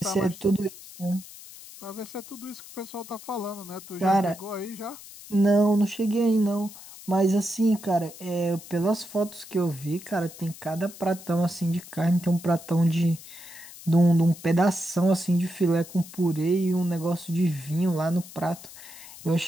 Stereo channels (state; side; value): noise; left; hiss, 17 dB below the sound